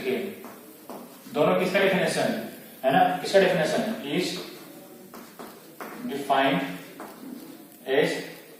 दोनों किसका डेफिनेशन है ना, किसका definition is defined as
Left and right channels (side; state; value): both; identical; correlation 1.00